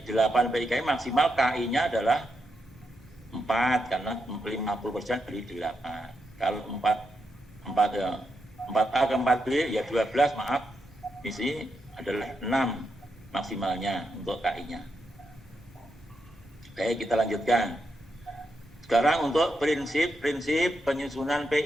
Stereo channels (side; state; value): both; normal; correlation 0.83